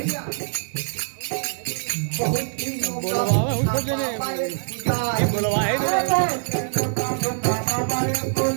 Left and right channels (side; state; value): left; silent; digital silence